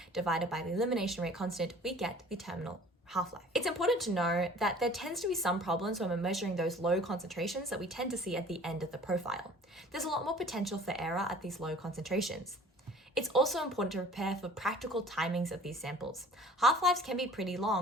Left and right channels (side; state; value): both; normal; correlation 0.48